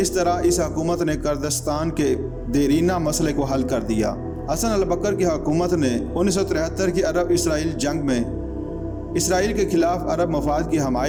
طرح اس حکومت نے کردستان کے دیرینہ مسئلے کو حل کر دیا۔ حسن البکر کی حکومت نے 1973 کی عرب اسرائیل جنگ میں اسرائیل کے خلاف عرب مفاد کی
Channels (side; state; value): both; identical; correlation 1.00